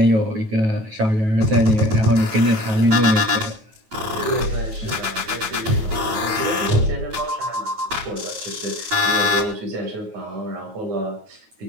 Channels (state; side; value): late; left; 9.3 ms